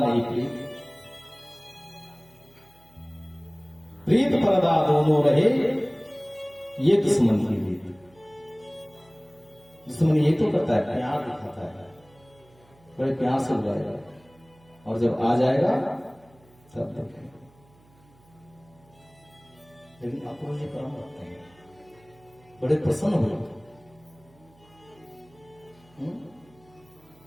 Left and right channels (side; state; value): right; noise; hum, 29 dB below the sound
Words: प्रीत पर्दा दोनों रहे, ये दुश्मन की रीत। दुश्मन ये तो करता है, प्यार दिखाता है, बड़े प्यार से बुलाएगा, और जब आ जाएगा सब देखेंगे। लेकिन अक्रूर जी परम भक्त हैं, बड़े प्रसन्न हुए,